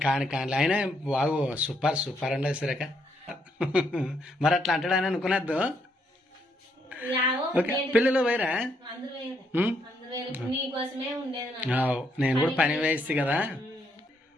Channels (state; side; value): normal; both; correlation 0.74